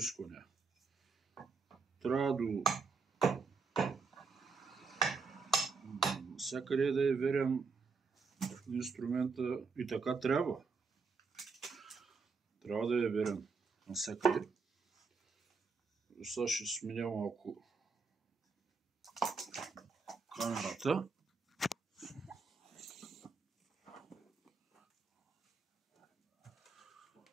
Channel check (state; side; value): quieter; left; 4.8 dB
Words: Трябва до всякъде да е верен инструмента и така трябва. Трябва да е верен навсякъде. Сега ще сменя малко камерата.